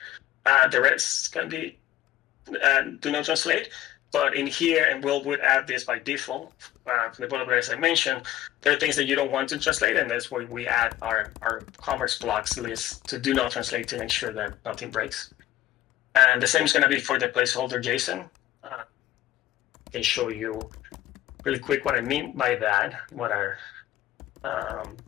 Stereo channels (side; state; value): right; quieter; 14.5 dB